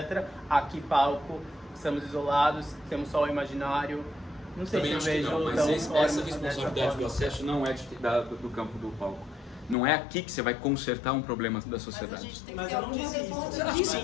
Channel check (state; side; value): drops out; right; at 9.8 s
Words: Aqui, palco, estamos isolados, temos só o imaginário. Não sei também se eu vejo... Não, mas essa responsabilidade do acesso não é do campo do palco. Não é aqui que você vai consertar um problema da sociedade. Mas eu não disse isso. Eu